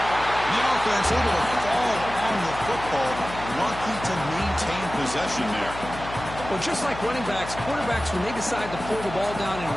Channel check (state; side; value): noise; left; hum, 11 dB below the sound